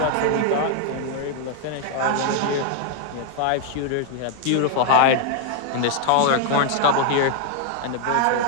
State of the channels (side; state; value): both; different; correlation 0.00